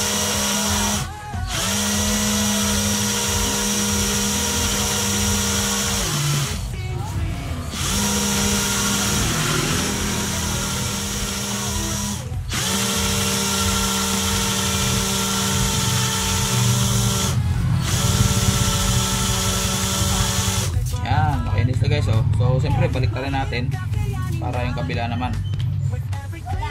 guys. So siyempre baliktarin natin para yung kabila naman.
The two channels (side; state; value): both; identical; correlation 1.00